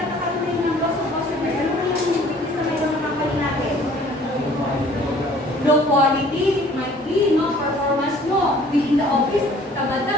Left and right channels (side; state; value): both; normal; correlation 0.53